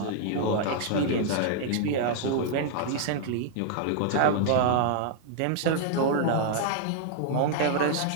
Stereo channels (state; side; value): different; both; correlation -0.01